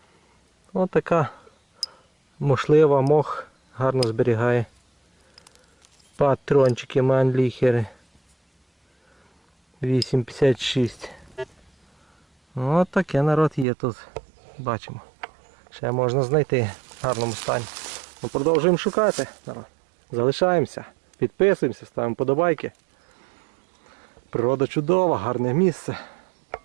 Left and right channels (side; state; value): left; drops out; at 13.7 s